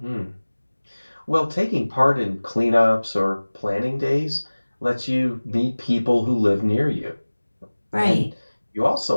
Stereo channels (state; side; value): inverted; both; correlation -1.00